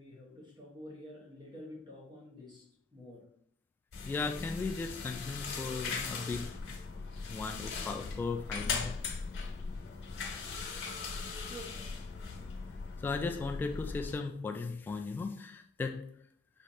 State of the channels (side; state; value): right; quieter; 4.0 dB